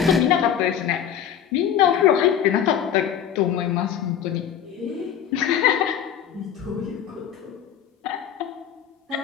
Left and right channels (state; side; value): quieter; right; 9.3 dB